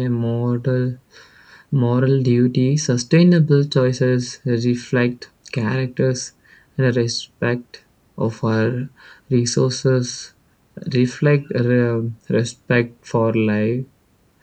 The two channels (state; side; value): identical; both; correlation 1.00